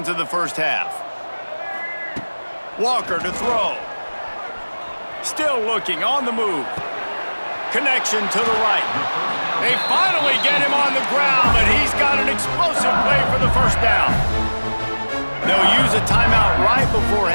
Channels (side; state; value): both; inverted; correlation -1.00